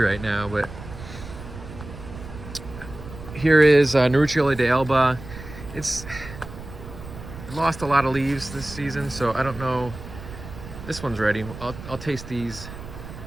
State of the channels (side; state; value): right; noise; rumble, 13 dB below the sound